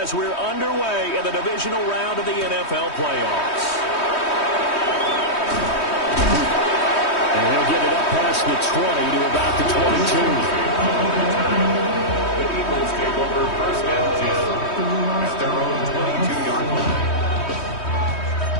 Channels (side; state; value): right; late; 3.2 ms